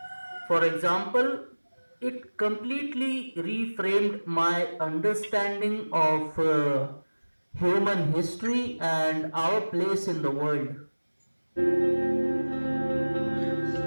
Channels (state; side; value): inverted; both; correlation -1.00